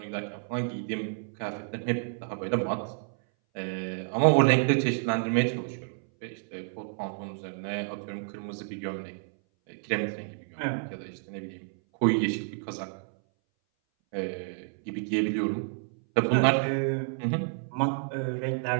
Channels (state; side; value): silent; left; 58 dB below the other